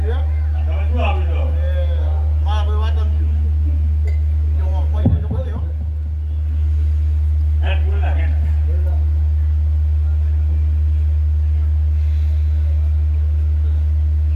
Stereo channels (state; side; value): identical; both; correlation 1.00